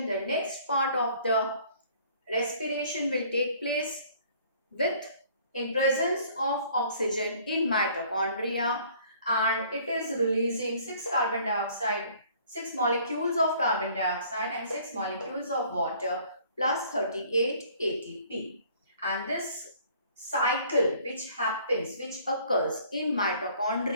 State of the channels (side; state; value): both; inverted; correlation -0.56